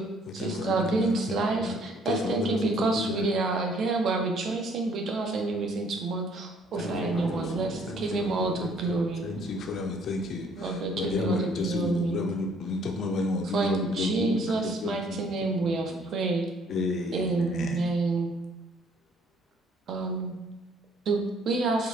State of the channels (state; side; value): normal; both; correlation 0.61